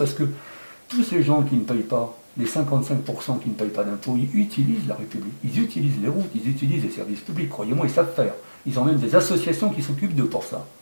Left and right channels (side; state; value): both; inverted; correlation -1.00